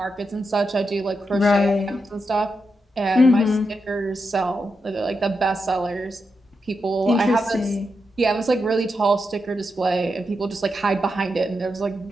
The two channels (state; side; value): normal; both; correlation 0.86